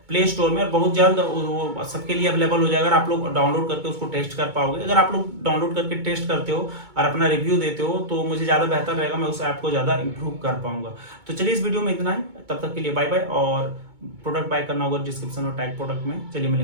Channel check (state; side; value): late; left; 2.2 ms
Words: प्ले स्टोर में, और बहुत जल्द वो सबके लिए अवेलेबल हो जाएगा। अगर आप लोग डाउनलोड करके उसको टेस्ट कर पाओगे, अगर आप लोग डाउनलोड करके टेस्ट करते हो और अपना रिव्यू देते हो तो मुझे ज़्यादा बेहतर रहेगा, मैं उस ऐप को ज़्यादा इंप्रूव कर पाऊंगा। तो चलिए इस वीडियो में इतना ही, तब तक के लिए बाय बाय। और प्रोडक्ट बाय करना होगा डिस्क्रिप्शन और टैग प्रोडक्ट में। चलिए